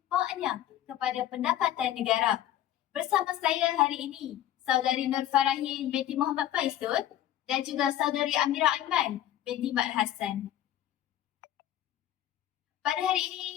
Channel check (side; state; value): right; quieter; 12.2 dB